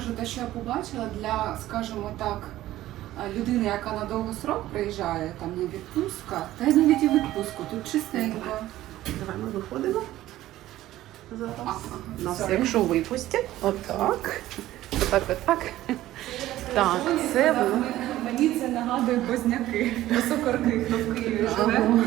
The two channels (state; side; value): quieter; left; 14.8 dB